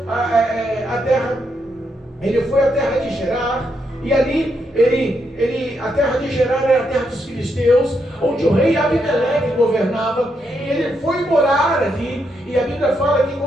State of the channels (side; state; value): both; normal; correlation 0.80